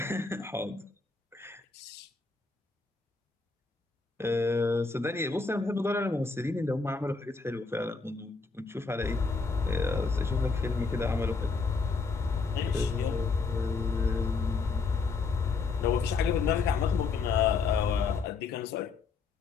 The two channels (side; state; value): right; quieter; 4.5 dB